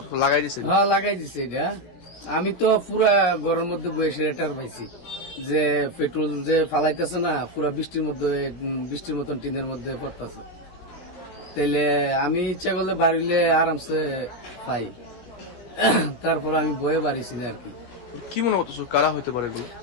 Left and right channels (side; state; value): right; late; 17 ms